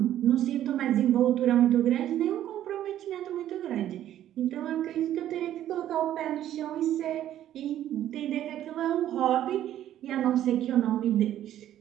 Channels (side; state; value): left; quieter; 11.9 dB